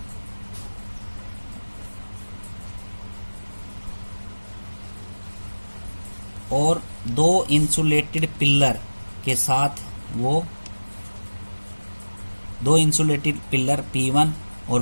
और दो इंसुलेटेड पिलर के साथ वो दो इंसुलेटेड पिलर P1 और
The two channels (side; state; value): both; inverted; correlation -1.00